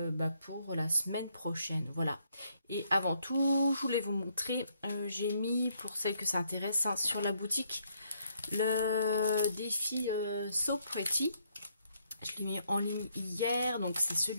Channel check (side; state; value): both; inverted; correlation -0.71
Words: pour la semaine prochaine. Voilà. Et avant tout, je voulais vous montrer, j'ai mis, pour celles que ça intéresse, sur la boutique, le défi So Pretty. Je l'ai mis en ligne hier, donc c'est